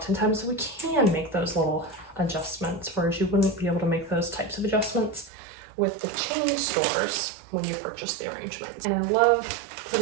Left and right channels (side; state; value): left; drops out; at 5.3 s